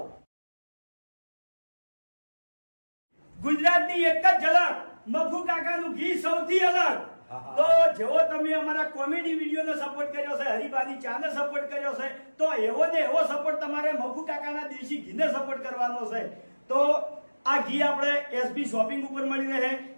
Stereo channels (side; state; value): both; inverted; correlation -1.00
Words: ગુજરાતની એક જ ઝલક મફુ કાકાનું ગીત સૌથી અલગ તો જેવો તમે અમારા કોમેડી વિડીયોને સપોર્ટ કર્યો છે હરીબાની ચાને સપોર્ટ કર્યો છે તો એવો ને એવો સપોર્ટ તમારે મફુ કાકાના દેશી ઘીને સપોર્ટ કરવાનો છે તો આ ઘી આપણે એસબી શોપિંગ ઉપર મળી રહે